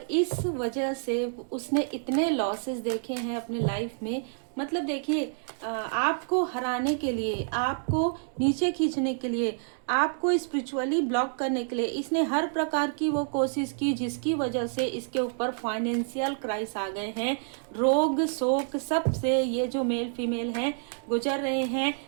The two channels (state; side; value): silent; left; digital silence